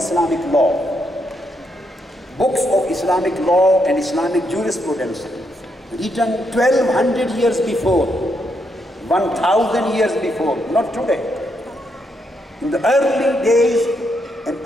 law, books of Islamic law and Islamic jurisprudence, written 1200 years before, 1000 years before, not today. In the early days and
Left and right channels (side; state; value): both; normal; correlation 0.78